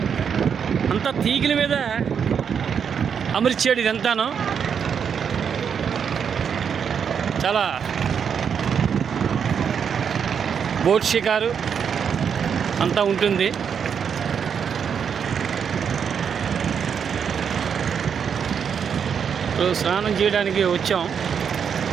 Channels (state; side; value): quieter; left; 7.2 dB